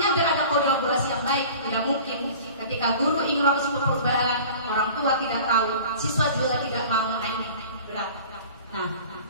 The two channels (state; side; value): inverted; both; correlation -0.42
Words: biar ada kolaborasi yang baik. Tidak mungkin ketika guru ingin melakukan perubahan, orang tua tidak tahu, siswa juga tidak mau, ini berat. Nah,